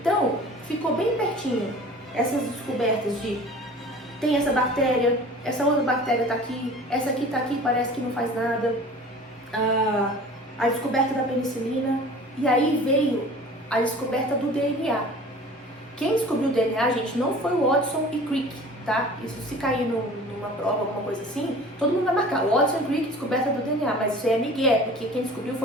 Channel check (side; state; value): both; normal; correlation 0.43